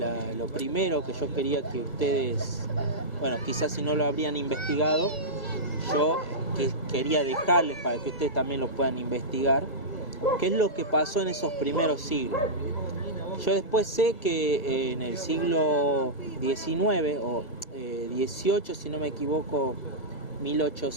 primero que yo quería que ustedes, quizás si no lo habrían investigado, yo quería dejarles para que ustedes también lo puedan investigar, qué es lo que pasó en esos primeros siglos. Yo después sé que en el siglo XIX o 18, si no me equivoco,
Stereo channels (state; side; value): late; right; 1.6 ms